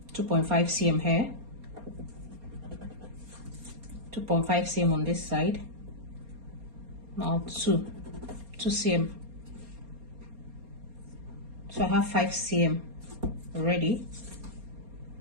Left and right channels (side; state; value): left; late; 4.3 ms